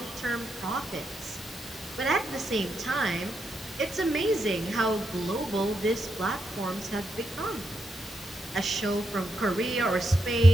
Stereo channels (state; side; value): normal; both; correlation 0.83